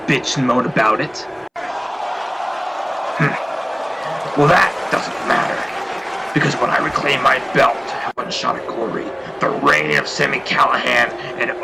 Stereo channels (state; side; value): identical; both; correlation 1.00